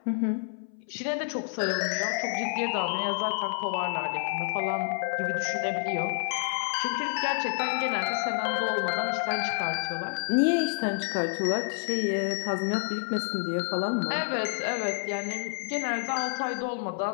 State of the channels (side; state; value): right; silent; 59 dB below the other